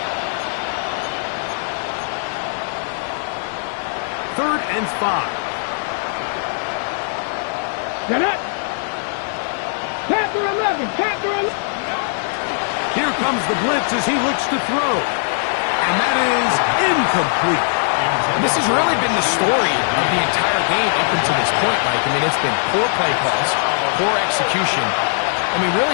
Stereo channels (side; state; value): right; silent; 66 dB below the other